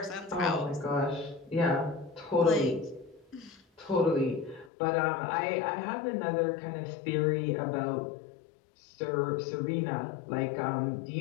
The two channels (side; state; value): right; drops out; at 4.7 s